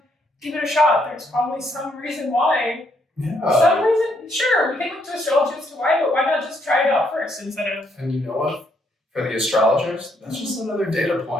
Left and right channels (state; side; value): normal; both; correlation 0.73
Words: give it a shot. There's probably some reason why. Yeah. Some reason, sure, we can look to astrology as to why, but why not just try it out first instead of... And you know what? For the astrologers, that's just another data